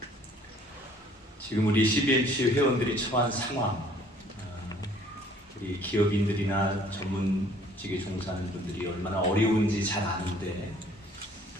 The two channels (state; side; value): normal; both; correlation 0.57